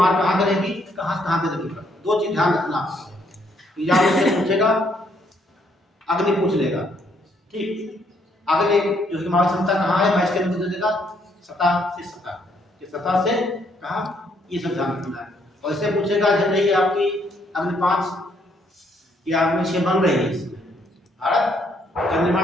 कहाँ करेगी, कहाँ से कहाँ पे लगेगा, 2 चीज ध्यान रखना आपको। एग्जाम से पूछेगा, अग्नि पूछ लेगा, ठीक। अगले जो हमारी क्षमता कहाँ है, मैं इसके अंदर दे देगा सतह से सतह, कि सतह से कहाँ, ये सब ध्यान रखना है। और इससे पूछेगा जब नहीं आपकी अग्नि 5 या अग्नि 6 बन रही है, इसमें भारत जब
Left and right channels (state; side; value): normal; both; correlation 0.70